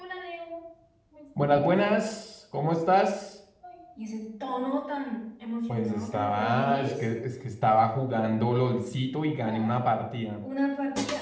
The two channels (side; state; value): both; identical; correlation 1.00